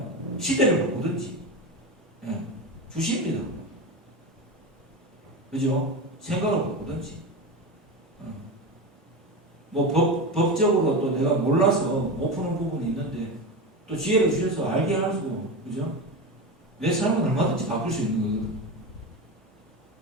시대를 바꾸든지 주십니다. 그죠? 생각을 바꾸든지 뭐 법적으로 또 내가 몰라서 못 푸는 부분이 있는데 또 지혜를 주셔서 알게 하시고 그죠? 내 삶은 얼마든지 바꿀 수 있는 거거든.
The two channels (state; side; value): normal; both; correlation 0.21